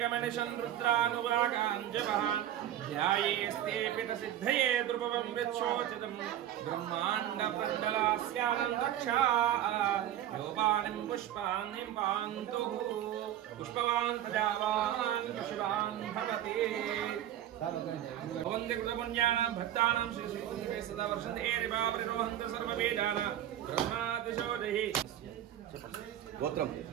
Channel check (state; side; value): quieter; left; 11.7 dB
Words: रुद्रानुरागाञ्जपः ध्यायेस्ते पितसिद्धये द्रुपवं विच्छोचितं ब्रह्माण्डमण्डलास्यानन्दक्षा योपानिं पुष्पान्निं पान्तुः पुष्पवान् प्रजावान् पशुवान् भवति भवन्ति कृतपुण्यानां भक्तानां श्रीश्रीकुञ्जे सदा वर्षन्ते एरिवापरिरोहन्ति सर्ववेदानां ब्रह्मातिशोधैः गोत्रम